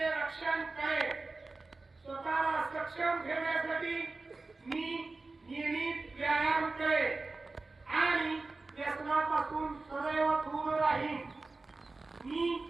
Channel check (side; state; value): left; quieter; 3.5 dB